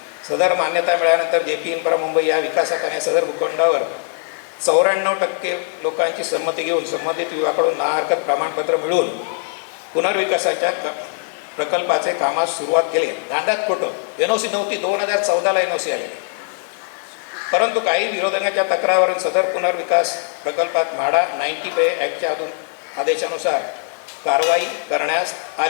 सदर मान्यता मिळाल्यानंतर JP इन्फ्रा मुंबई या विकासकाने सदर भूखंडावर 94% लोकांची संमती घेऊन संबंधित विभागाकडून ना हरकत प्रमाणपत्र मिळवून पुनर्विकासाच्या प्रकल्पाचे कामास सुरुवात केली. दांडात खोटं, NOC नव्हती, 2014ला NOC आले. परंतु काही विरोधकांच्या तक्रारीवरून सदर पुनर्विकास प्रकल्पात म्हाडा 90 ॲक्टच्या आदेशानुसार कारवाई करण्यास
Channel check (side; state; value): right; silent; 57 dB below the other